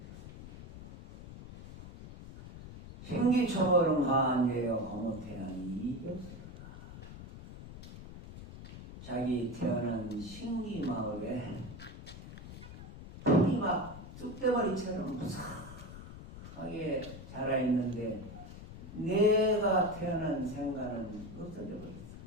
생기초월은 가한제여 고모태양이 이겼으로다. 자기 태어난 신기마을에 풀이 막 쑥대머리처럼 무사하게 자라있는데 내가 태어난 생가는 없어져 버렸어.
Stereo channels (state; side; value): noise; left; rumble, 13 dB below the sound